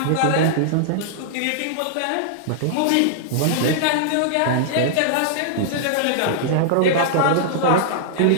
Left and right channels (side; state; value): both; different; correlation -0.01